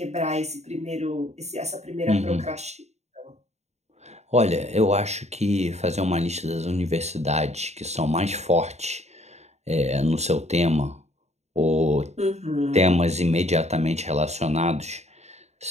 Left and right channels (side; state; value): left; late; 0.32 ms